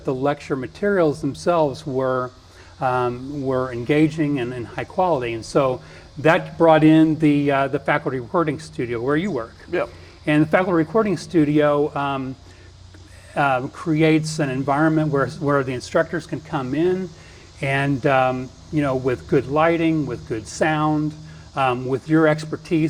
the lecture materials themselves were engaging and high quality. And so that brought in the faculty recording studio where you work. Yep. And the faculty recording studio creates an environment where the instructors can come in and with good lighting, with good sound, with your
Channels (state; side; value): identical; both; correlation 1.00